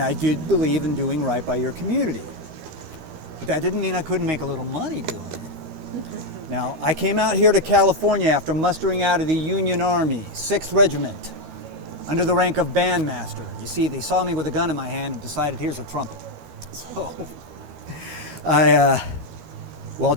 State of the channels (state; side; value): late; left; 13 ms